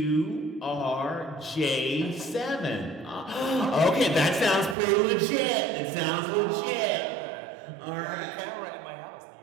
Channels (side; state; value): left; drops out; at 4.8 s